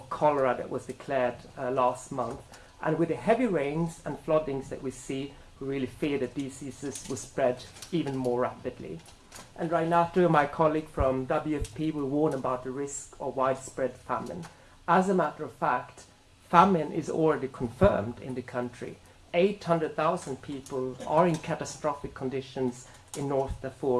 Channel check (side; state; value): both; identical; correlation 1.00